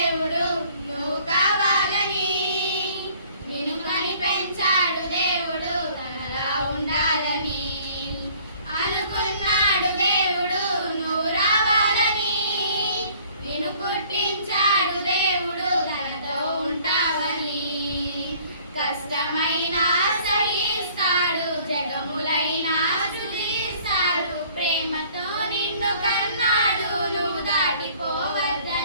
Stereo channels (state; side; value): inverted; both; correlation -0.56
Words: నువ్వు కావాలని, నిన్ను కని పెంచాడు దేవుడు తనలా ఉండాలని. అనుకున్నాడు దేవుడు నువ్వు రావాలని, నిన్ను పుట్టించాడు దేవుడు తనతో ఉంటావని. కష్టమైన సహిస్తాడు, జగములైనా స్తుతిస్తాడు, ప్రేమతో నిన్ను కన్నాడు నువ్వు